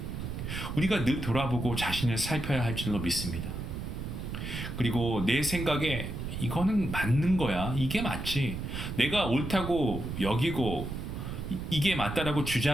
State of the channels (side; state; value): right; noise; rumble, 6 dB below the sound